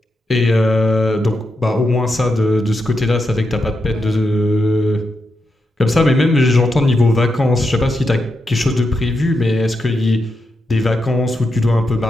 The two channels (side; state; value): both; normal; correlation 0.85